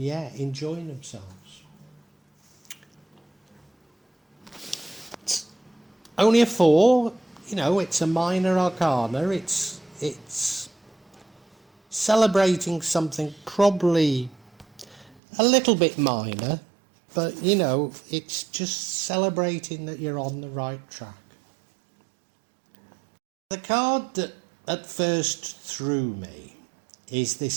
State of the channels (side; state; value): left; drops out; at 15.2 s